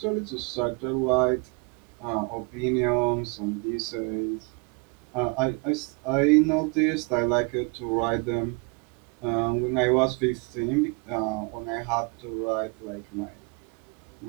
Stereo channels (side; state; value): left; quieter; 31.3 dB